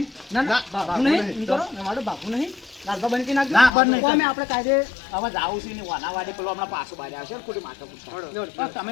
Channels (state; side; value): drops out; right; at 3.7 s